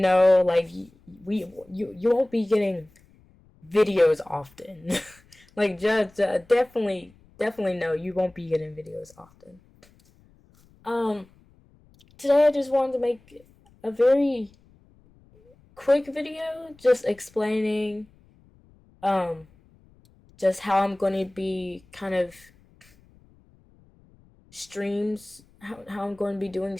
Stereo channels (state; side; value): noise; left; rumble, 29 dB below the sound